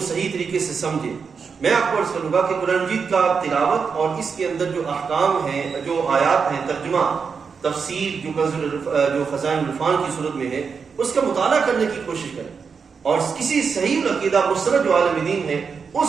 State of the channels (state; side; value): quieter; left; 5.7 dB